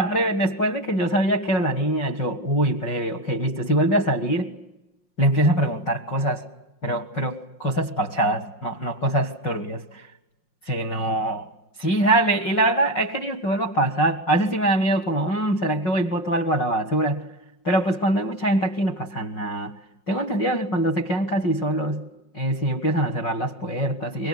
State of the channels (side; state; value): right; late; 5.6 ms